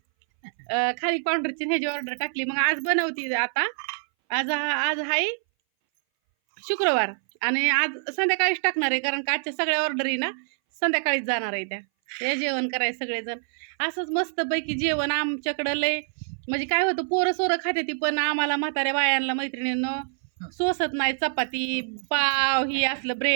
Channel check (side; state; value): left; silent; 60 dB below the other